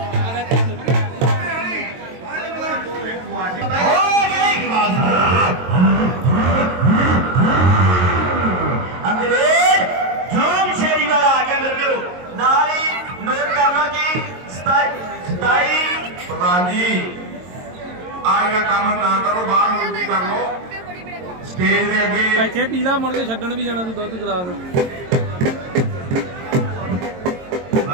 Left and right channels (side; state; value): left; late; 22 ms